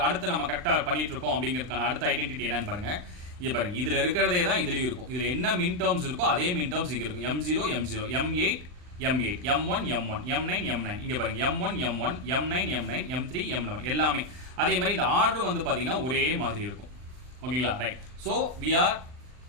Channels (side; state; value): left; late; 39 ms